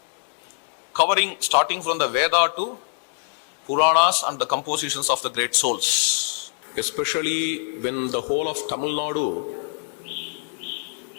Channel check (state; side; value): silent; right; digital silence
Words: covering starting from the Veda to Puranas and the compositions of the great souls. Especially when the whole of Tamil Nadu